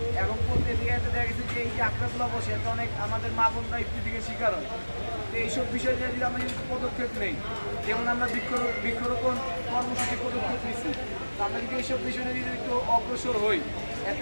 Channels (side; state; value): both; inverted; correlation -1.00